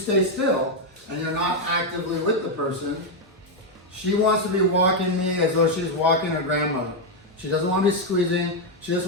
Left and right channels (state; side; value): normal; both; correlation 0.02